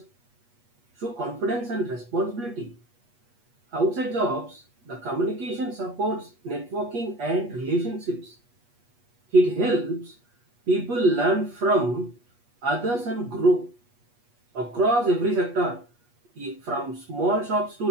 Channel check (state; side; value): late; left; 8.3 ms